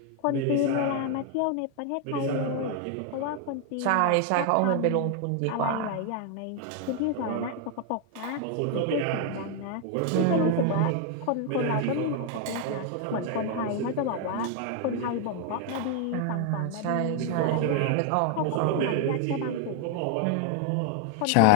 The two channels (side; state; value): both; different; correlation 0.00